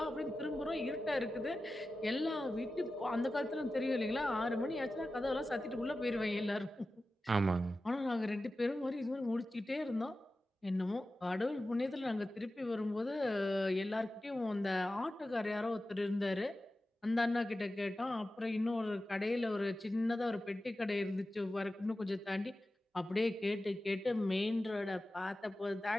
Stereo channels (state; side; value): normal; both; correlation 0.94